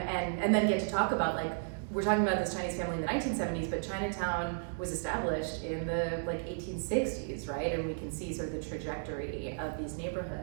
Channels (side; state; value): left; silent; digital silence